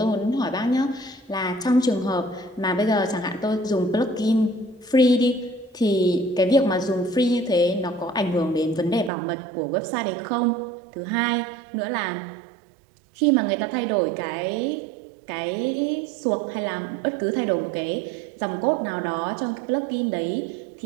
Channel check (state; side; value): drops out; left; at 9.1 s